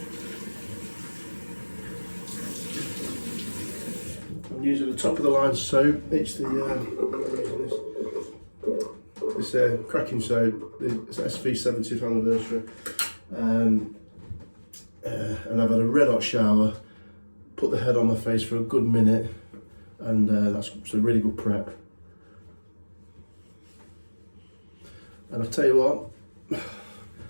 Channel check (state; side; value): inverted; both; correlation -1.00